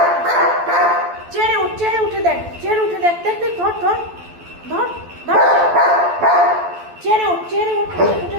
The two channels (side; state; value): left; late; 12 ms